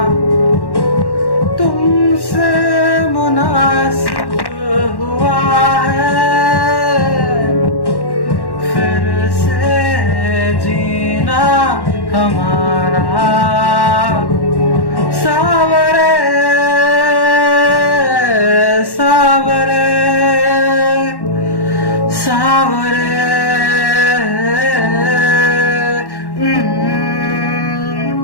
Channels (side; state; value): right; late; 1.1 ms